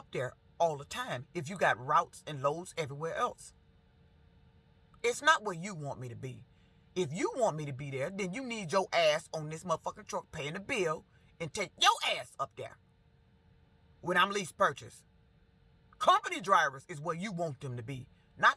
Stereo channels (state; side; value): identical; both; correlation 1.00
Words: there all the time if you got routes and loads everywhere else. It's not where you want me to be. If you want me to be there, then you need your ass on this motherfucking truck paying the bill and take your ass up there when I'm lease purchase. Company drivers is where you want them to be,